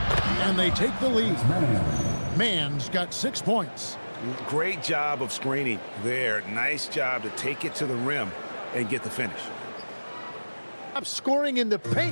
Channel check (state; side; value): inverted; both; correlation -1.00